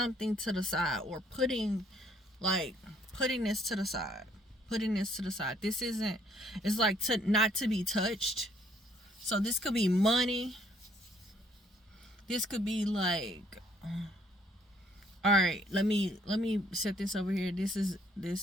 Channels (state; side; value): normal; both; correlation 0.65